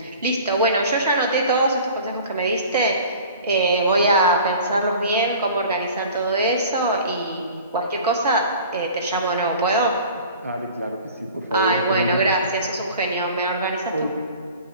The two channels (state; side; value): inverted; both; correlation -0.43